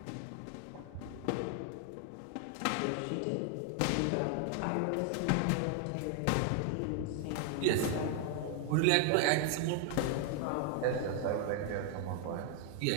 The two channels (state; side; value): different; both; correlation 0.00